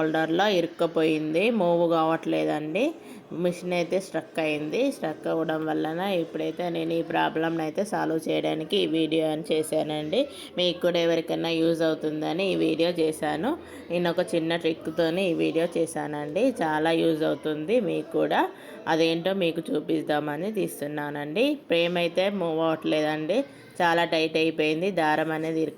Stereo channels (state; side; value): identical; both; correlation 1.00